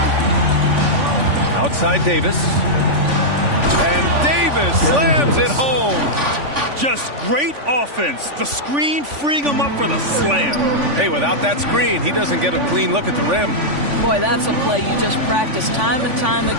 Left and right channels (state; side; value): late; left; 3.5 ms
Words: Outside Davis. And Davis slams it home. Just great offense. The screen freeing him up for the slam. Hey, without that screen, he doesn't get a clean look at the rim. Boy, that's a play you just practice time and time